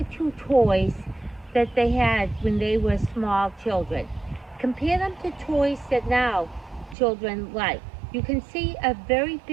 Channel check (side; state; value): left; drops out; at 7.0 s